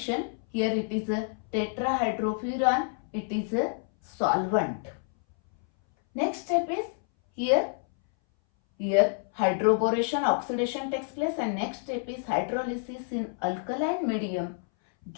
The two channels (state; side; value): silent; right; 59 dB below the other